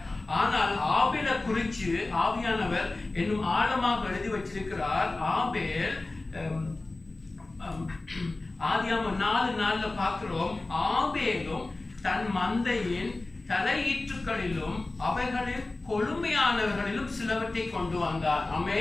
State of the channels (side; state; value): right; quieter; 3.1 dB